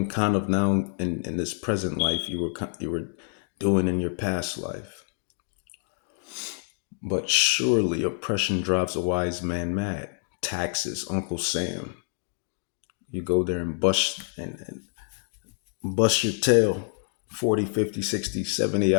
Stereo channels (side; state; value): right; silent; 60 dB below the other